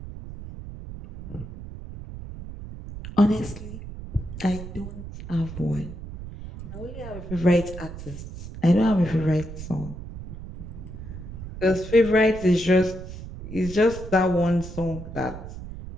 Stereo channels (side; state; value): right; noise; rumble, 11 dB below the sound